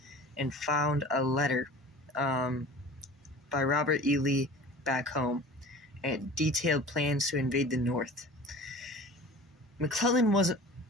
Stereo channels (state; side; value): normal; both; correlation 0.41